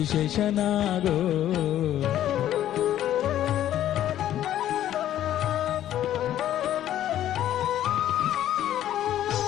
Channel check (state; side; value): quieter; right; 12.0 dB